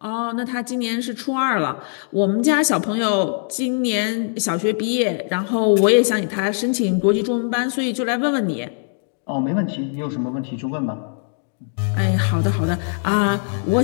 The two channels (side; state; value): right; silent; 65 dB below the other